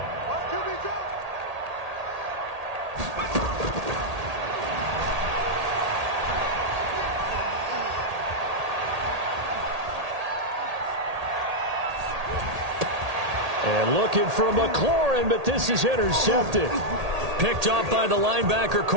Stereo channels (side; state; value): left; late; 1.8 ms